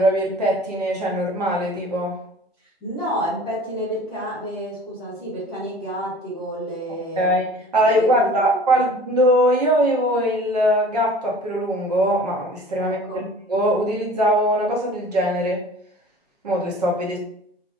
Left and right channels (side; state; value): both; normal; correlation 0.45